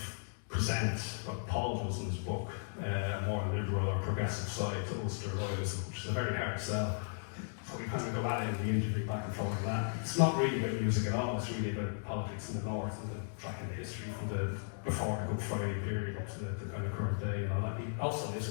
present what Paul does in his book, a more liberal or progressive side to Ulster loyalism, which is a very hard sell. So we kind of go at it in the interview back and forth on that. It's not really about music at all, it's really about politics in the north and the tracking the history from the before the Good Friday period up to the kind of current day and all that. He also lives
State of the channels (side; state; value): right; silent; digital silence